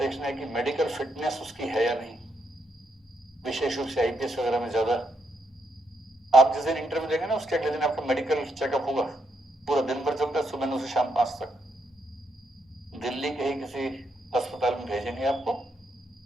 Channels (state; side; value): normal; both; correlation 0.78